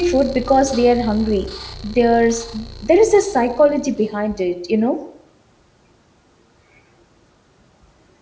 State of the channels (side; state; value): both; identical; correlation 1.00